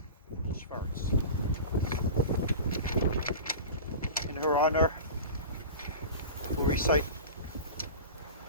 Shvarts. In her honor, we'll recite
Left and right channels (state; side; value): inverted; both; correlation -0.31